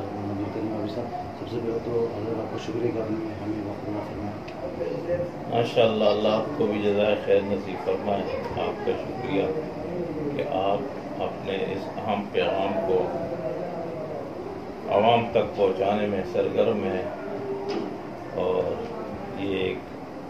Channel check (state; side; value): identical; both; correlation 1.00